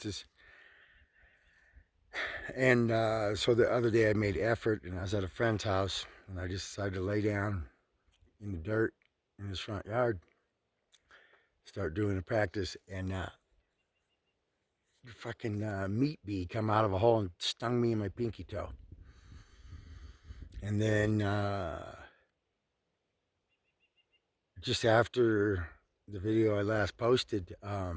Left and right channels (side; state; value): both; identical; correlation 1.00